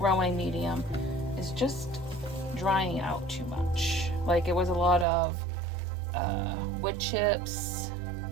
medium is just drying out too much. Like it was a lot of wood chips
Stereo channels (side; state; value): left; drops out; at 5.1 s